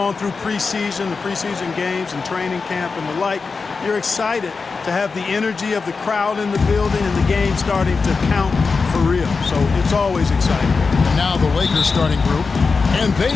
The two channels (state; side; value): quieter; right; 4.6 dB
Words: through preseason, the preseason games and training camp and the like, you're excited to have the energy of the crowd in the building and the game starting to count for real. So it's always exciting. And now the Lakers starting group, and they